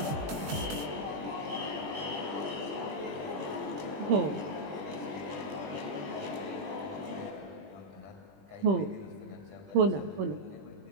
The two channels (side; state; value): left; late; 20 ms